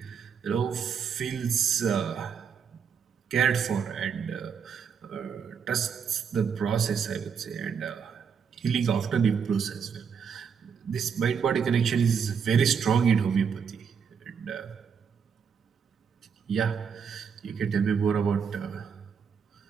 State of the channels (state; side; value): quieter; left; 6.8 dB